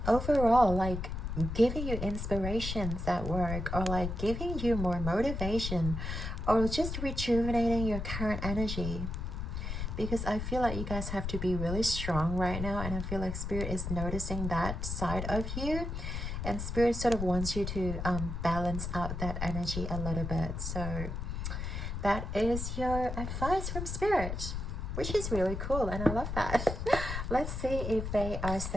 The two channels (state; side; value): noise; left; rumble, 4 dB below the sound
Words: overall, like giving you inspirations at work, or like giving you more motivation, or just rejuvenating your current energy. Because I feel like you guys have to be really strong right now, and I feel like Spirit is noticing that side of you, and Spirit sort of wants you to balance out that energy a little bit. So that is your advice from Spirit, which is really cool, and I love that. Let's see if they are